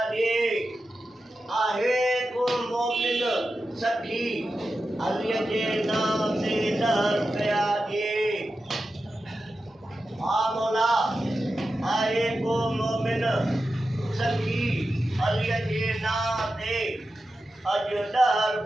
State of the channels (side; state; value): both; normal; correlation 0.91